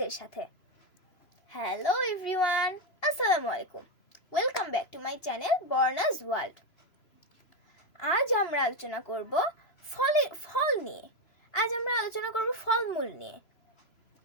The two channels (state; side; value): late; right; 3.0 ms